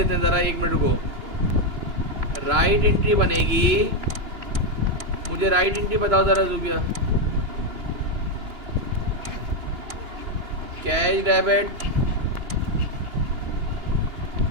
हैं ज़रा, 1 मिनट को। राइट एंट्री बनेगी, मुझे राइट एंट्री बताओ ज़रा Zubia. Cash debit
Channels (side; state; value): left; late; 2.9 ms